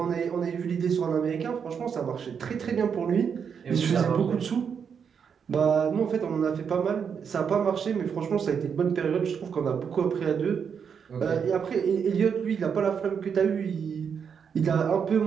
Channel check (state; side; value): quieter; left; 6.9 dB